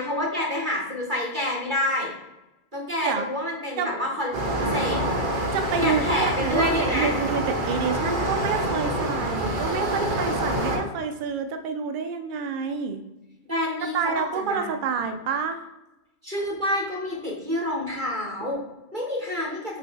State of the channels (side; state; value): left; late; 2.3 ms